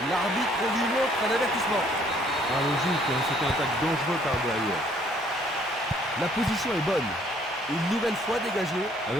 L'arbitre lui montre un avertissement. Ah, logique, hein, c'est un attaque dangereux par derrière. La position est bonne. Une nouvelle fois dégagée.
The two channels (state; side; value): normal; both; correlation 0.62